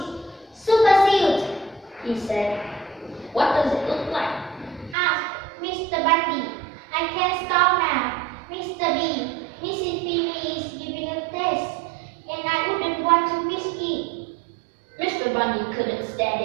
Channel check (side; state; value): left; drops out; at 5.0 s